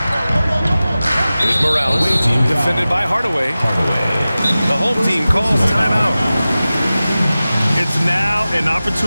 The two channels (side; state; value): both; inverted; correlation -0.96